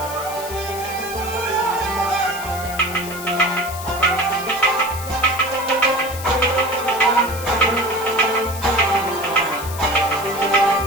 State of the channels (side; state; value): left; noise; hiss, 12 dB below the sound